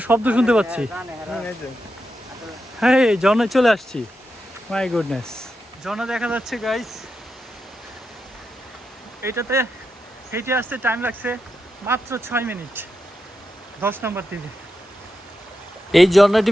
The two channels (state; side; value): normal; both; correlation 0.87